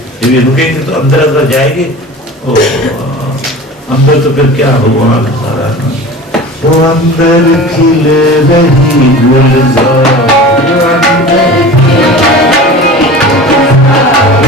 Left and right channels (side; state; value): both; normal; correlation 0.37